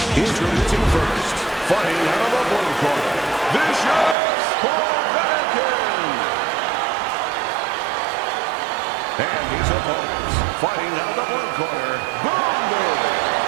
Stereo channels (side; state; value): left; drops out; at 4.2 s